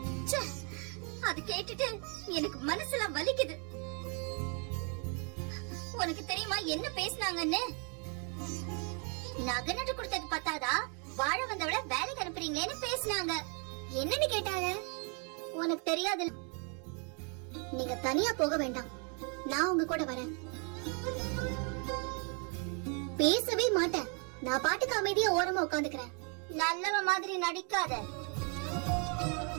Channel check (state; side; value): quieter; left; 37.5 dB